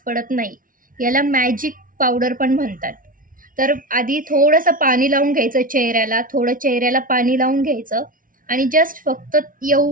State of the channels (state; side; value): late; left; 0.39 ms